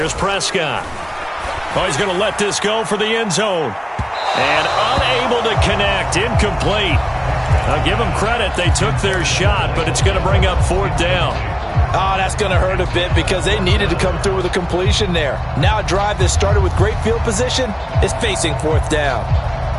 Prescott. Oh, he's going to let this go for the end zone. And unable to connect. Incomplete. I'll give them credit. They took their shot, but it's going to bring up 4th down. Oh, that's going to hurt a bit because they needed to come through with a completion there. Now a drive that started with great field position is facing 4th down.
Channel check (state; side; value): identical; both; correlation 1.00